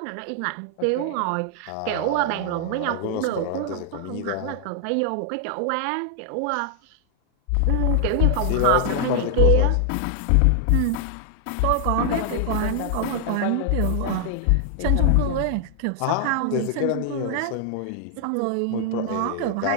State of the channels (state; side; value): different; both; correlation 0.00